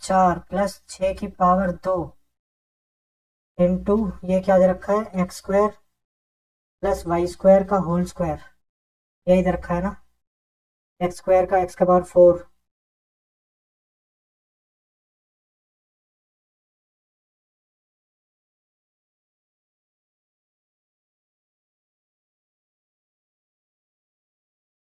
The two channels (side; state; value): both; identical; correlation 1.00